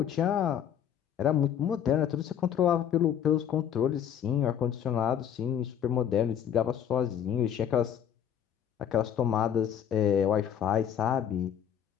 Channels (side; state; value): right; quieter; 9.2 dB